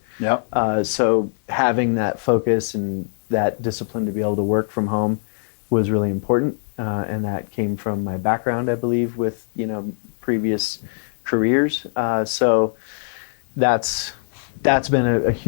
Yeah. So having that focus and that discipline to be able to work from home was really important, and that came from my background, I believe, with previous careers. So that's been a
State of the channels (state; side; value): silent; right; digital silence